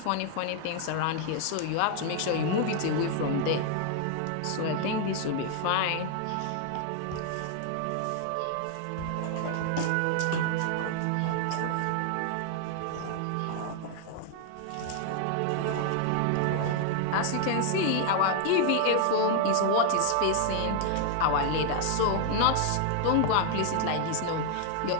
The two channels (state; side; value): different; both; correlation 0.00